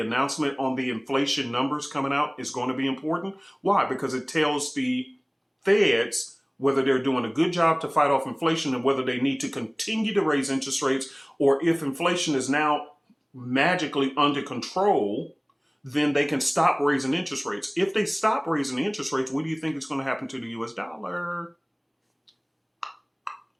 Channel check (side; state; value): both; identical; correlation 1.00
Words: on the inflation numbers coming out is going to be important? Why? Because it tells the Feds whether they're doing a good job to fight off inflation and whether they need to continue to raise interest rates, or if inflation is now magically under control, then they can stop raising interest rates. If they stop raising the interest rates, what do you think is going to happen to the US dollar?